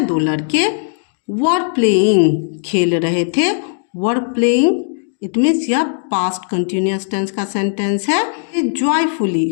दो लड़के वर प्लेइंग, खेल रहे थे। वर प्लेइंग इट मीन्स यह पास्ट कंटिन्यूअस टेंस का सेंटेंस है। जॉयफुली,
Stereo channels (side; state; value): right; silent; digital silence